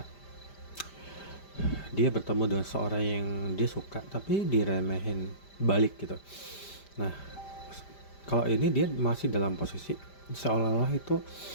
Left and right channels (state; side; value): late; right; 5.0 ms